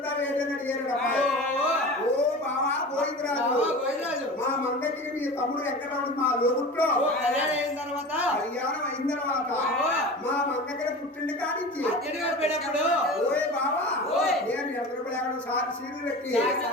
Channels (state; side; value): normal; both; correlation 0.33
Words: ఏంటని అడిగారు. ఓ బావా గోవిందరాజు మా మంగకి మీ తమ్ముడు వెంకటరాముడు మా లోగుట్లో కళ్యాణం అయిన తర్వాత కళ్యాణం అయిన తర్వాత మా మంగళ పుట్టిండి కానించి అద్దెడిగారు పోయినప్పుడు ఓయ్ బావా ఓయ్. నేను ఎదురుపడి సారి సీలు పెట్టి